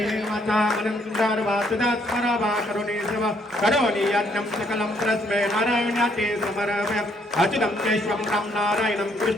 अनंतर वासुदात स्मरावा करुणी सेवा करोनी अन्नम सकलम प्रस्मे नारायणाते समर्पय अच्युतं केशवं राम नारायणं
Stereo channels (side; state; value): both; normal; correlation 0.69